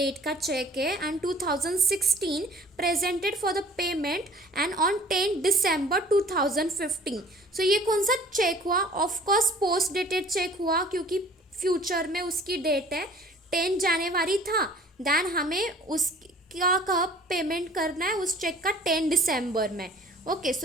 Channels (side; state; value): both; normal; correlation 0.50